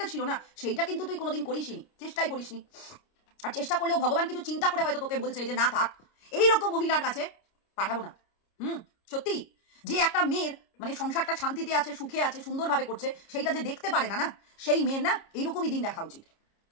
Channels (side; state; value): right; late; 29 ms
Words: ছিল না, সেইটা কিন্তু তুই কোনোদিন করিসনি, চেষ্টাই করিসনি। আর চেষ্টা করলেও ভগবান কিছু চিন্তা করে হয়তো তোকে বলছে যে না থাক, এইরকম মহিলার কাছে পাঠাবো না। সত্যি যে একটা মেয়ের মানে সংসারটা শান্তিতে আছে, সুখে আছে, সুন্দরভাবে করছে, সেইটা যে দেখতে পারে না, না সেই মেয়ের না এইরকমই দিন দেখা উচিত।